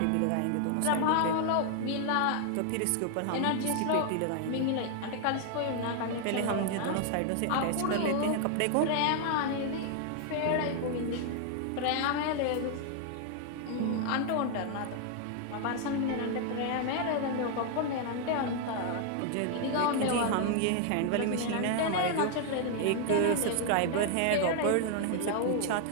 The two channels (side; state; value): both; different; correlation 0.00